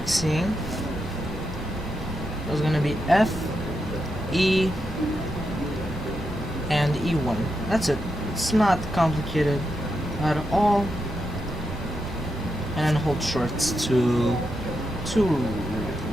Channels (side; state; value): both; normal; correlation 0.85